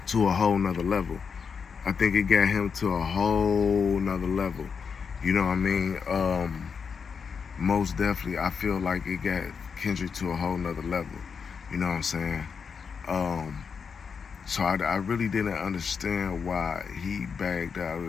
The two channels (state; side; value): quieter; right; 6.0 dB